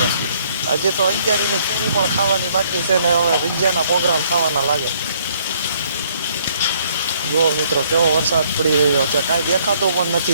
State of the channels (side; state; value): both; inverted; correlation -0.65